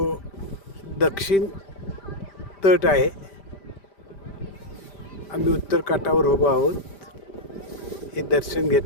दक्षिण तट आहे. आम्ही उत्तर काठावर उभो आहोत. हे दर्शन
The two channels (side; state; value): right; late; 5.0 ms